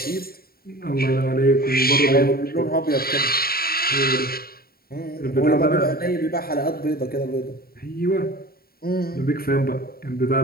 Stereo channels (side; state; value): right; late; 0.44 ms